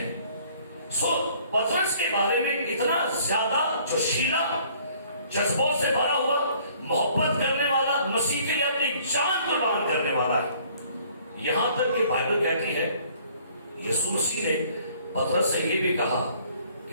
سو پطرس کے بارے میں اتنا زیادہ جوشیلا, جذبوں سے بھرا ہوا, محبت کرنے والا, مسیح کے لیے اپنی جان قربان کرنے والا ہے. یہاں تک کہ بائبل کہتی ہے یسوع مسیح نے پطرس سے یہ بھی کہا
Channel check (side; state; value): both; inverted; correlation -0.58